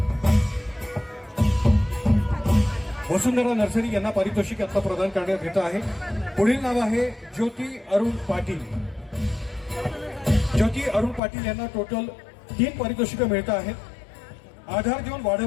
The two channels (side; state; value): right; drops out; at 11.2 s